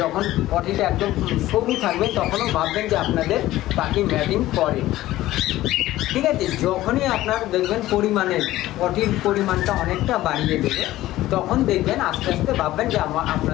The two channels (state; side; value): quieter; right; 15.6 dB